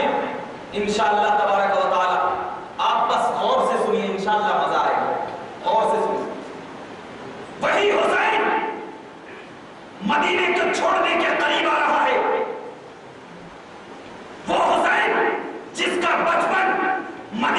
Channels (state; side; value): identical; both; correlation 1.00